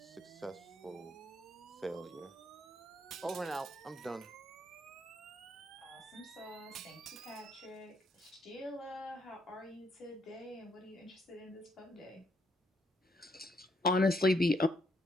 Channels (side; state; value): both; normal; correlation 0.73